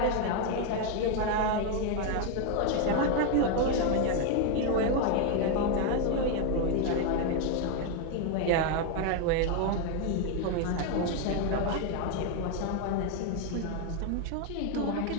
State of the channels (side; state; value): both; different; correlation 0.01